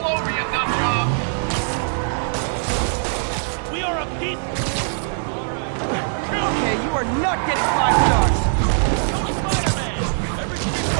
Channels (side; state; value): left; silent; digital silence